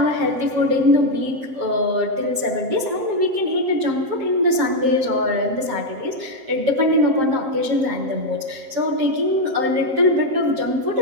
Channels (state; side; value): late; left; 7.6 ms